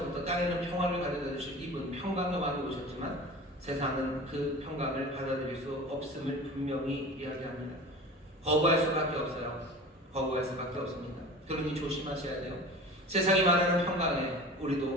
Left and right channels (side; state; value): both; normal; correlation 0.37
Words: 땅에는 평화를 가져다 주실 이분, 평강의 왕이 오셨지만 세상은 그 평강을 받아들일 수 없음을 분명히 이야기합니다. 거부할 수밖에 없어요. 거부할 수밖에 없습니다. 그러니 조심하셔야 돼요. 세상이 말하는 평강에